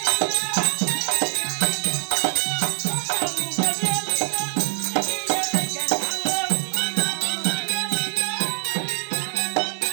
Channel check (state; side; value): silent; left; digital silence